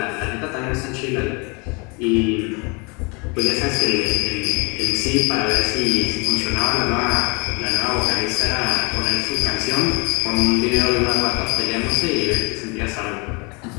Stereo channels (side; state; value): right; quieter; 30.4 dB